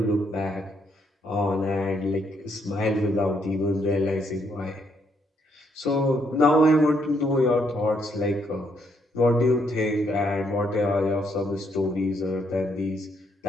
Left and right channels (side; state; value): both; normal; correlation 0.73